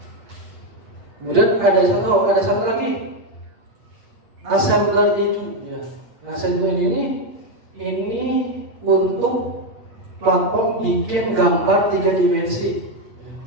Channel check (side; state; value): left; late; 8.5 ms